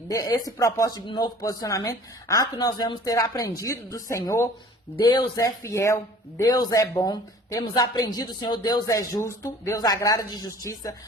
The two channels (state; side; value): normal; both; correlation 0.48